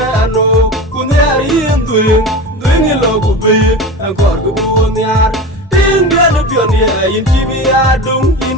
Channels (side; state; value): both; normal; correlation 0.29